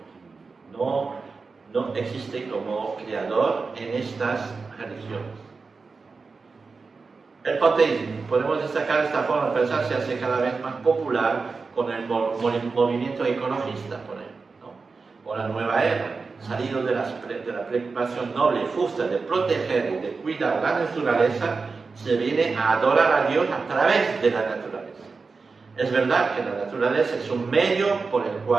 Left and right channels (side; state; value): left; quieter; 4.4 dB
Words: no existe como creador en estas religiones. El panteísmo, podemos destacar esta forma de pensar, se hace cada vez más popular con el movimiento ecologista, por ejemplo, ¿no? O la nueva era, salido de la preocupación noble y justa de proteger y de cuidar la naturaleza, se viene a adorar a Dios a través de la naturaleza. Es verdad que la naturaleza es un medio por el